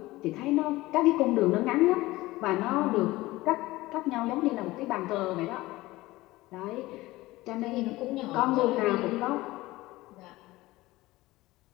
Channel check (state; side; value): quieter; right; 18.8 dB